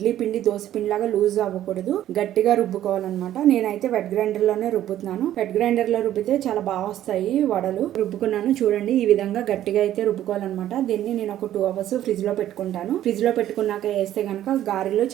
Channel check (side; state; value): left; quieter; 12.4 dB